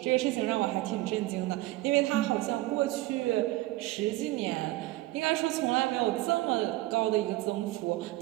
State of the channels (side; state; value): left; quieter; 18.1 dB